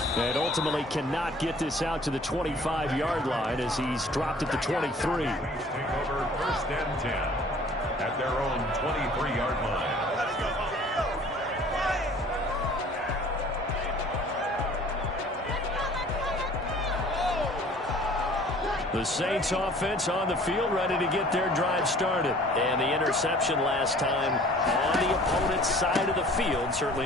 And ultimately cannot get this out to the 25-yard line as he's dropped at the 23. Take over 1st and 10 at their own 23-yard line. The Saints offense on the field, ready to get their drive started. And the interception last time on the opponent's side of the field, certainly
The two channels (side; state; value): both; normal; correlation 0.51